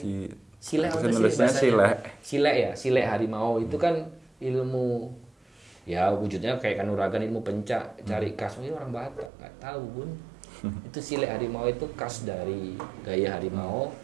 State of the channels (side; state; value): left; drops out; at 9.3 s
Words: Sile apa sile harimau itu kan ilmu ya wujudnya kayak kanuragan, ilmu pencak, cari khas ini orang Batak nggak tahu Bun. Itu sile harimau itu khas dari gaya harimau